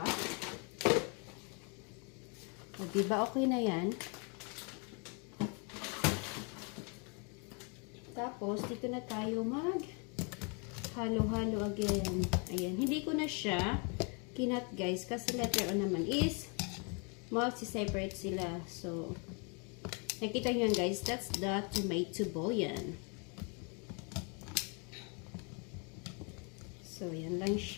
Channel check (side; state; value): right; quieter; 35.2 dB